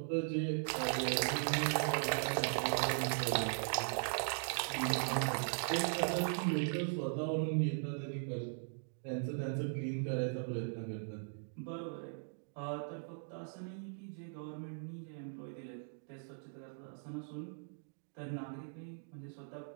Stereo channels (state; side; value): silent; left; digital silence